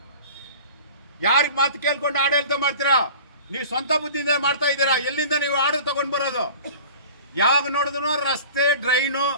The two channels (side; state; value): both; inverted; correlation -0.41